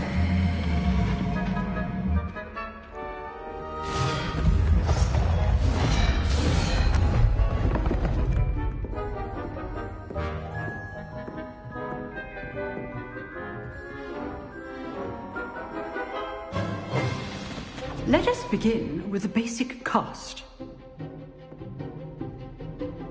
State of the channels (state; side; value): identical; both; correlation 1.00